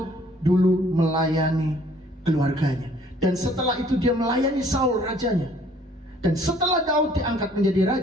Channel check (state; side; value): normal; both; correlation 0.59